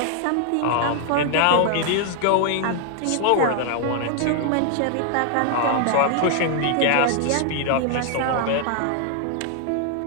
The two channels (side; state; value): both; different; correlation 0.00